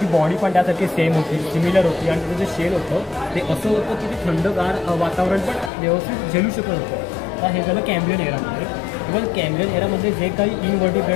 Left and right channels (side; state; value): right; drops out; at 5.7 s